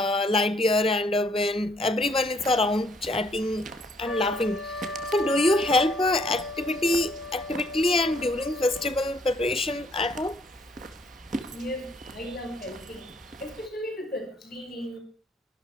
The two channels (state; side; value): normal; both; correlation 0.66